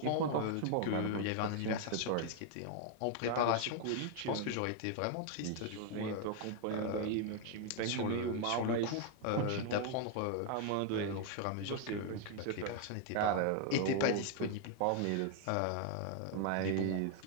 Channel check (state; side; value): different; both; correlation 0.00